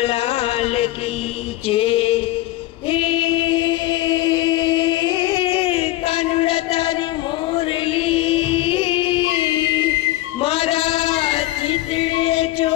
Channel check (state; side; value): quieter; right; 16.7 dB